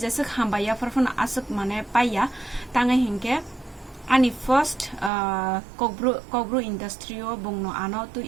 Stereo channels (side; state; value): left; drops out; at 5.1 s